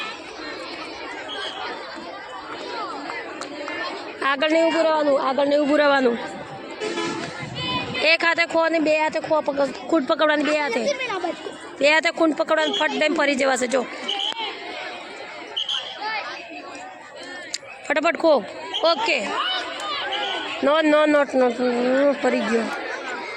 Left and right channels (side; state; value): both; identical; correlation 1.00